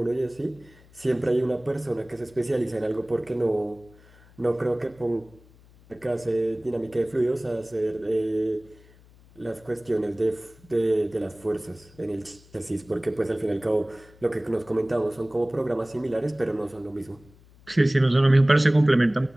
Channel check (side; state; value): left; noise; hum, 26 dB below the sound